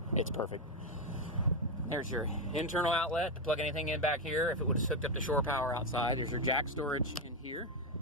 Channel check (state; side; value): normal; both; correlation 0.07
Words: it's perfect. There's your internal outlet to plug anything in back here if it was hooked up to shore power outside. There's your jack storage in here.